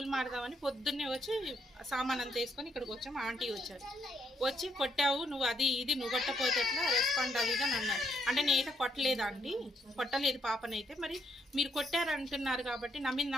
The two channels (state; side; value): normal; both; correlation 0.74